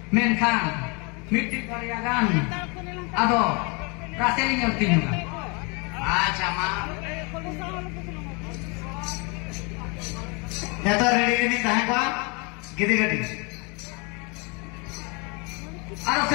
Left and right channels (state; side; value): quieter; right; 31.1 dB